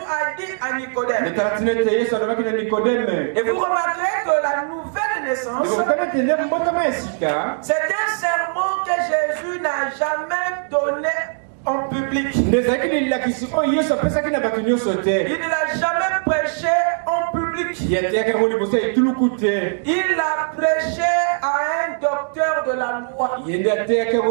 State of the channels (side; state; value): left; silent; digital silence